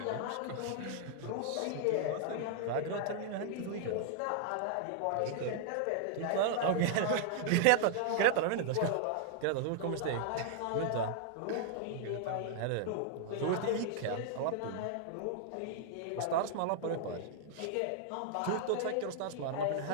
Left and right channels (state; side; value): different; both; correlation -0.01